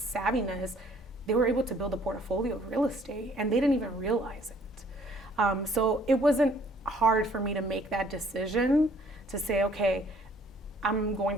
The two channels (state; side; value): normal; both; correlation 0.60